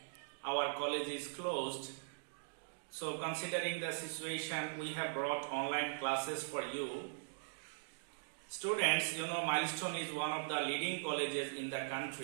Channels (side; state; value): left; silent; digital silence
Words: our college is closed. So considering the situation, we have brought online classes for you. Students, you know, Milestone is one of the leading colleges in the